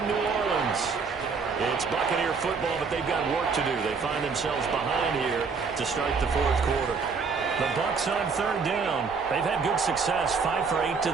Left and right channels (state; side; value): quieter; left; 5.1 dB